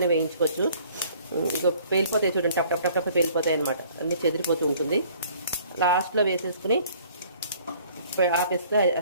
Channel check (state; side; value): inverted; both; correlation -0.55